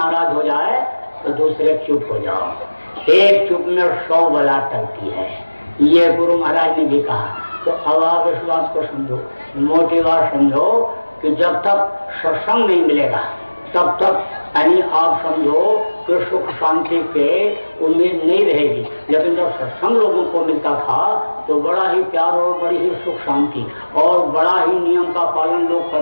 हो जाए तो दूसरे चुप हो जाओ, एक चुप में 100 बला टलती है, ये गुरु महाराज ने भी कहा। तो अब आप इस बात को समझो, मोटी बात समझो कि जब तक सत्संग नहीं मिलेगा तब तक यानी आप समझो कि सुख शांति के उम्मीद नहीं रहेगी। लेकिन जब सत्संग लोगों को मिलता था तो बड़ा ही प्यार और बड़ी ही सुख शांति और बड़ा ही नियम का पालन लोग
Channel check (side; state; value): both; inverted; correlation -1.00